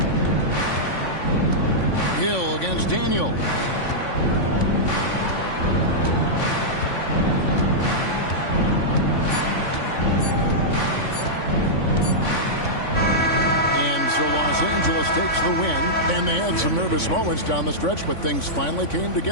Hill against Daniel. So Los Angeles takes the win, and they had some nervous moments down the stretch, but things finally came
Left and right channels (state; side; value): late; right; 3.5 ms